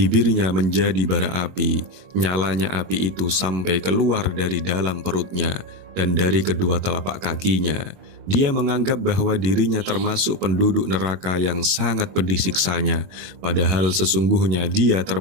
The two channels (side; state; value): left; late; 21 ms